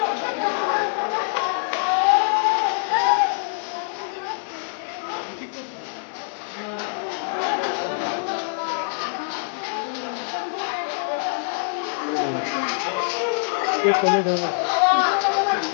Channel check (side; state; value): right; silent; digital silence